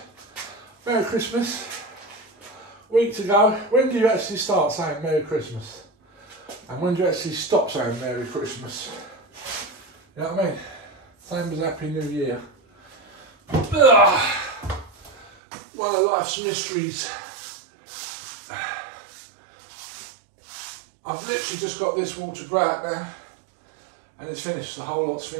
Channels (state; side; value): drops out; left; at 15.3 s